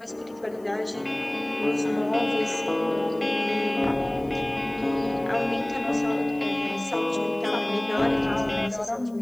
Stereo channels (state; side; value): noise; left; hiss, 29 dB below the sound